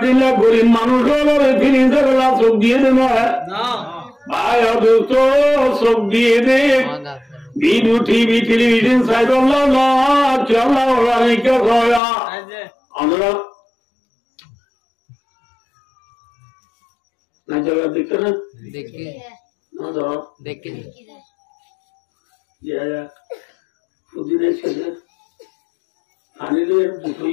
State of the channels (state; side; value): drops out; right; at 12.0 s